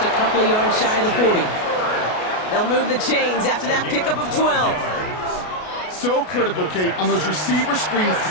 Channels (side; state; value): right; late; 33 ms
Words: a couple of yards shy of the 40. They'll move the chains after that pickup of 12. So critical, Kate, on those receiver screens to